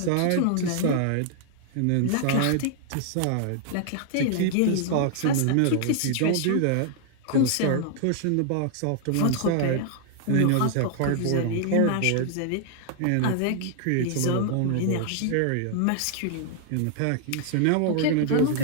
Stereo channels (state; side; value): different; both; correlation 0.00